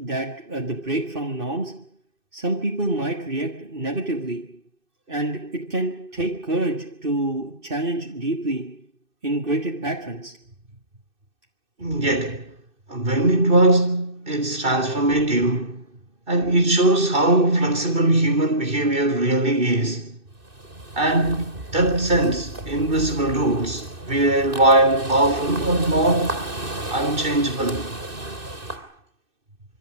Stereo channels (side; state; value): left; late; 2.6 ms